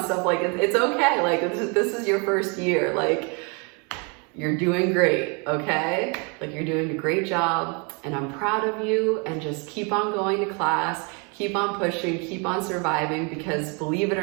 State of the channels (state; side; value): quieter; left; 33.3 dB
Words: stuff. Like, it's okay. Like, this is your first year. Like, You're doing great, okay? Like, you're doing a great job, and I'm proud of you, and just keep on going to class, keep on pushing, keep on surviving, because believe it